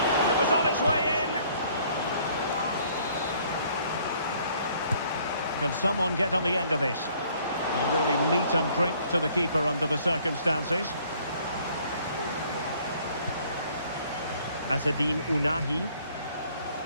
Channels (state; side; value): inverted; both; correlation -0.61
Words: It was on its way in. Can someone get on the end of this? Really meat and drink to the keeper under the circumstances. Azzedine Ounahi.